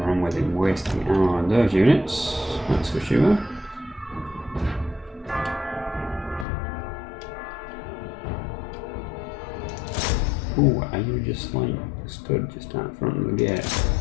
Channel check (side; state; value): right; drops out; at 6.5 s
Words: wrong with him wasting ammo on those units, that's for sure. Ooh, are you just like stood just out front of the gate?